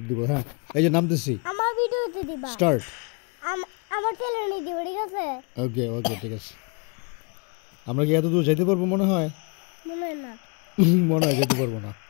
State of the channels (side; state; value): right; quieter; 33.7 dB